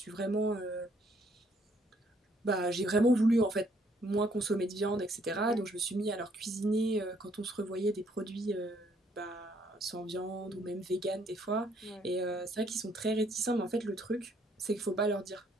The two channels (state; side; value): normal; both; correlation 0.67